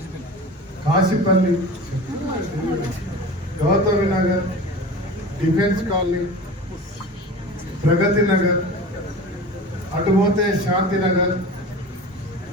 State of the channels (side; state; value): both; normal; correlation 0.35